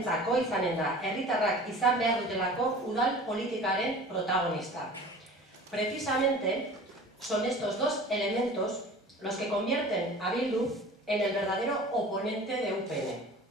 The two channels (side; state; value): both; normal; correlation 0.41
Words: izanen da, herritarrak izan behar dutelako udal politikaren protagonista. Precisamente son estos dos elementos los que convierten a Bildu en el verdadero oponente de UPN.